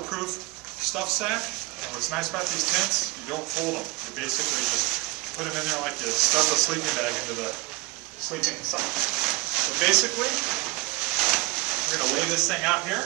stuff sack. And what's nice about these tents, you don't fold them. You basically just put them in there like you stuff a sleeping bag into the sleeping sack. So basically, we're going to lay this thing out here.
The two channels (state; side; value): quieter; left; 22.4 dB